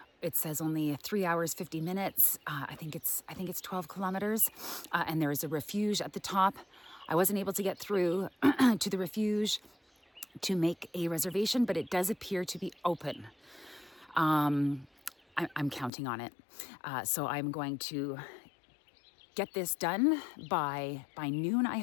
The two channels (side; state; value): right; drops out; at 15.9 s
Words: It says only 3 hours, 50 minutes. I think it's 12 kilometers. And there is a refuge at the top. I wasn't able to get through to the refuge to make a reservation, but it does appear to be open. I'm counting on it. So I'm going to get this done by noon, I